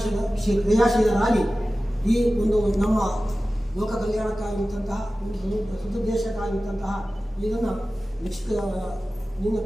ಕ್ರಿಯಾಶೀಲರಾಗಿ ಈ ಒಂದು ನಮ್ಮ ಲೋಕ ಕಲ್ಯಾಣಕ್ಕಾಗಿದ್ದಂತಹ ಒಂದು ಸದುದ್ದೇಶಕ್ಕಾಗಿದ್ದಂತಹ ಇದನ್ನು ನಿನ್ನ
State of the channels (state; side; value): normal; both; correlation 0.95